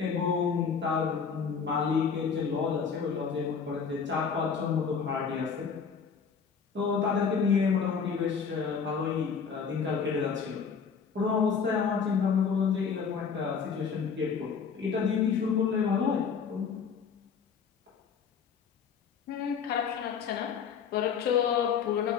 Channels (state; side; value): quieter; right; 6.3 dB